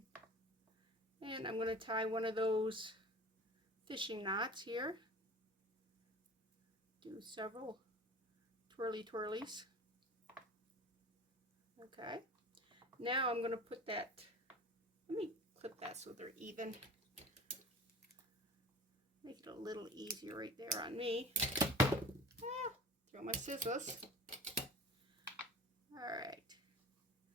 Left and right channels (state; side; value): normal; both; correlation 0.39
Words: And I'm going to tie one of those fishing knots here. Do several twirlies. Okay. Now I'm going to put that, let me clip that so they're even. Make it a little easier right there on me. Throw my scissors. Alright.